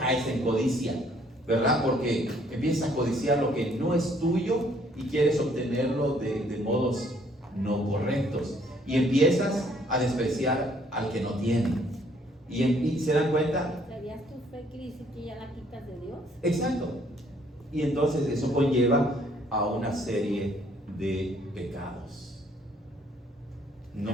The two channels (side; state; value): both; normal; correlation 0.63